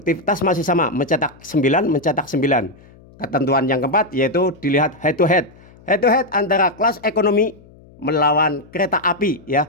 masih sama, mencetak 9, mencetak 9. Ketentuan yang keempat yaitu dilihat head to head. Head to head antara Kelas Ekonomi melawan Kereta Api, ya.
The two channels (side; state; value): left; noise; hum, 25 dB below the sound